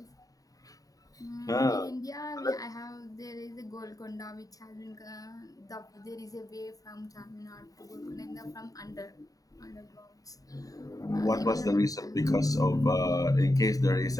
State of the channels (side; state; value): right; late; 0.17 ms